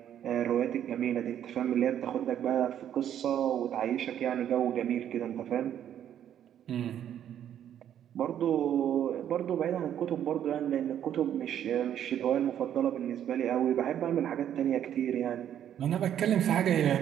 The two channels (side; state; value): left; quieter; 10.2 dB